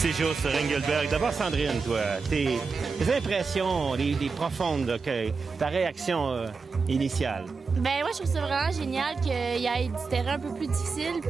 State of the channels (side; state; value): left; quieter; 4.7 dB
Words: sur Engelberg, d'abord, Sandrine, toi, tes impressions, les profondes, là, ta réaction initiale. Ben moi, je trouve ça vraiment génial qu'il y ait du terrain un peu plus difficile